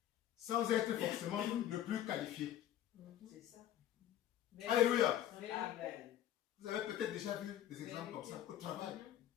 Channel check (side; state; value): right; quieter; 11.9 dB